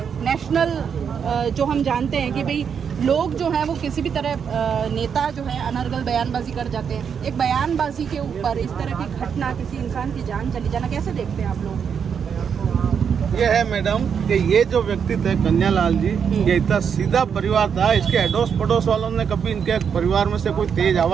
नेशनल जो हम जानते हैं कि भाई लोग जो हैं वो किसी भी तरह नेता जो है अनर्गल बयानबाजी कर जाते हैं, एक बयानबाजी के ऊपर इस तरह की घटना, किसी इंसान की जान चली जाना, कैसे देखते हैं आप लोग? ये है मैडम कि ये जो व्यक्ति थे कन्यालाल जी, ये इतना सीधा परिवार था। इसके अड़ोस पड़ोस वालों ने कभी इनके परिवार में से कोई तेज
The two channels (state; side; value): quieter; left; 7.1 dB